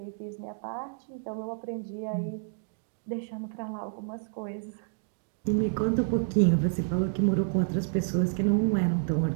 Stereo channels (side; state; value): left; silent; 58 dB below the other